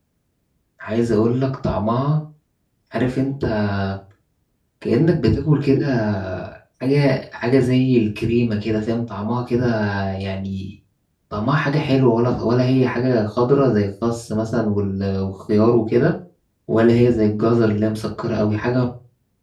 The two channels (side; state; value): both; identical; correlation 1.00